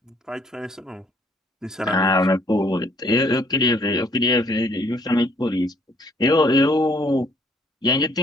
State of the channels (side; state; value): both; normal; correlation 0.63